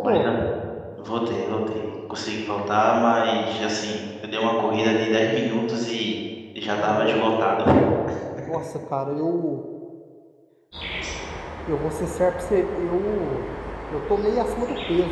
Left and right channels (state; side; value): identical; both; correlation 1.00